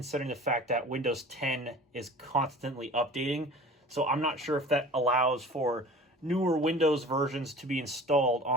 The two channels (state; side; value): normal; both; correlation 0.42